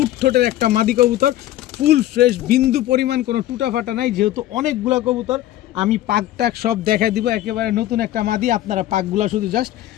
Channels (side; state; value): right; quieter; 14.1 dB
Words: ঠোঁটের একটা মাদি কবুতর, ফুল ফ্রেশ, বিন্দু পরিমাণ কোনো টুটা ফাটা নাই। যেহেতু অনেকগুলো কবুতর আমি পাক টাক সব দেখাই দিব, একেবারে নতুন একটা মাদি, আপনারা পাকগুলা শুধু জাস্ট